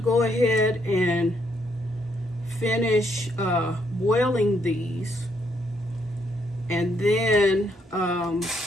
ahead and finish boiling these. And then,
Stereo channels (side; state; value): both; normal; correlation 0.73